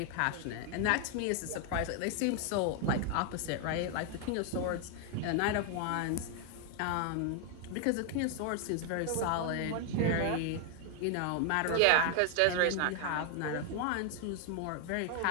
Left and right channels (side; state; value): both; different; correlation 0.00